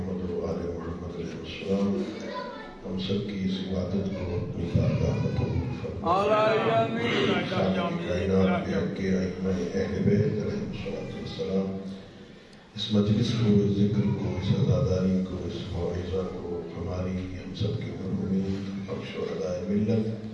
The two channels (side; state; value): both; identical; correlation 1.00